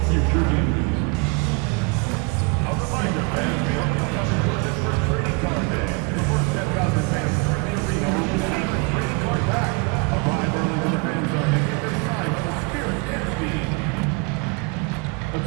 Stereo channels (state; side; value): quieter; left; 29.8 dB